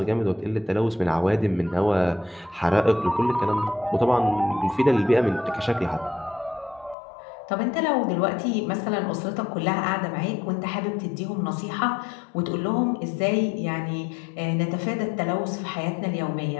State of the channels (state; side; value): drops out; right; at 7.0 s